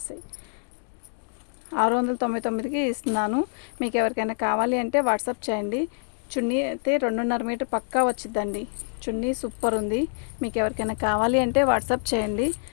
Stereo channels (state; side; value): silent; right; digital silence